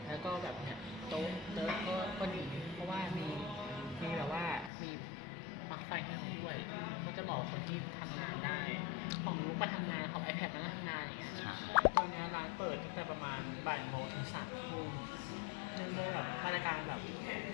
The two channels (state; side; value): drops out; right; at 4.7 s